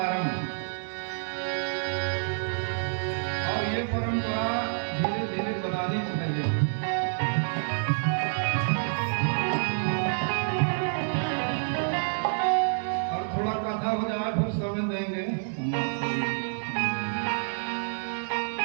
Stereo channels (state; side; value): silent; left; digital silence